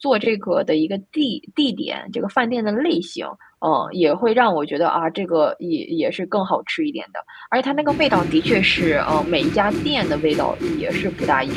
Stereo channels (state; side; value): identical; both; correlation 1.00